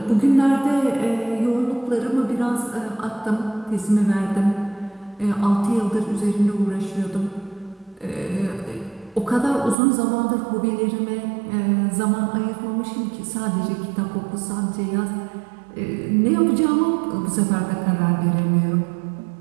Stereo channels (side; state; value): left; drops out; at 9.8 s